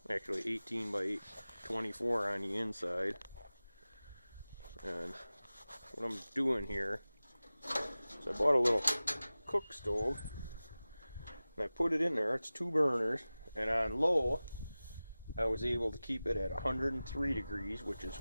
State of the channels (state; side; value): inverted; both; correlation -0.97